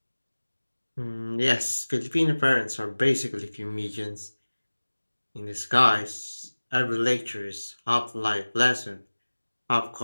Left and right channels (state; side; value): inverted; both; correlation -1.00